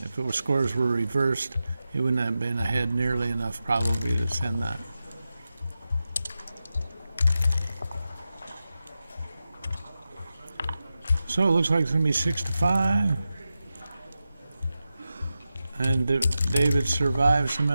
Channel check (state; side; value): inverted; both; correlation -0.92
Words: If it was scores were reversed, he wouldn't have been ahead nearly enough probably to send that. So it looks like it's going to be 6-5. And David survived some